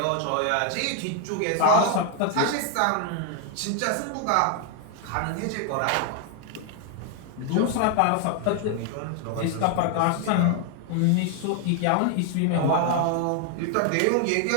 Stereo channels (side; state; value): both; different; correlation 0.00